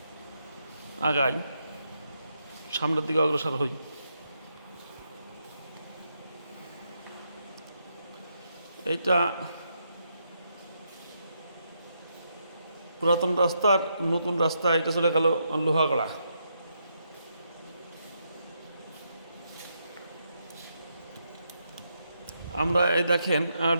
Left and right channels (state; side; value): inverted; both; correlation -0.80